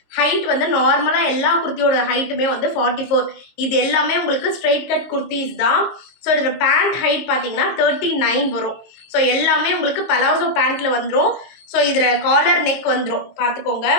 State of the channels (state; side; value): late; right; 22 ms